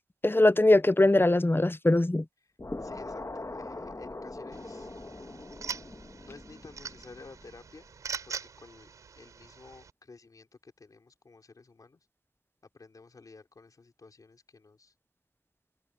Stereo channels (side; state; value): both; normal; correlation 0.93